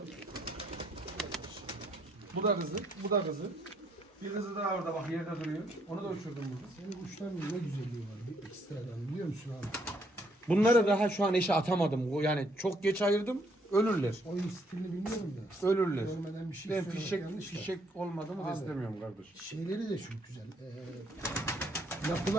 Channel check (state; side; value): normal; both; correlation 0.69